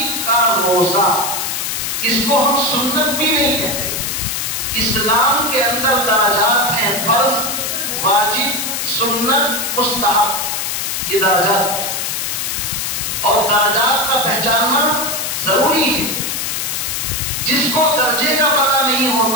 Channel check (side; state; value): left; noise; hiss, 2 dB below the sound